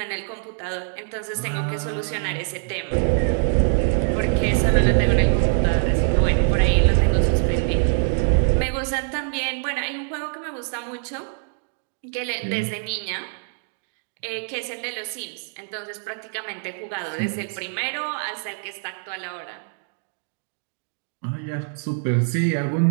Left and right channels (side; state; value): left; silent; 58 dB below the other